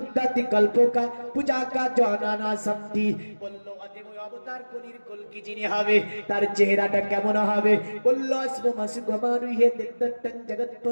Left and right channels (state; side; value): inverted; both; correlation -1.00